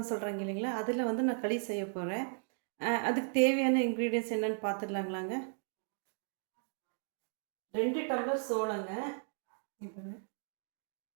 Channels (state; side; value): silent; left; 54 dB below the other